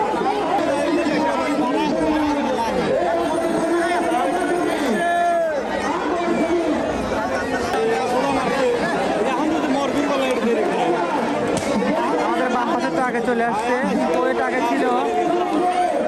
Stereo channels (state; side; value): identical; both; correlation 1.00